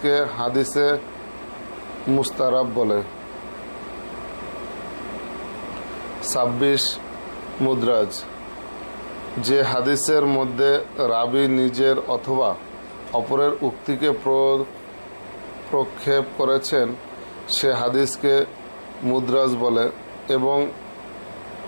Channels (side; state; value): both; inverted; correlation -1.00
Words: হাদিসে মুস্তারাব বলে। 26 মুদ্রাজ, যে হাদিসের মধ্যে রাবি নিজের অথবা অপরের উক্তিকে প্রক্ষেপ করেছেন সে হাদিসকে মুদ্রাজ বলে এবং